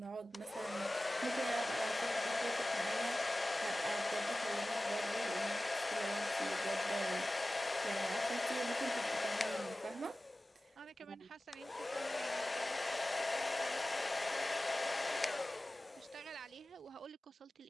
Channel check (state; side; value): normal; both; correlation 0.97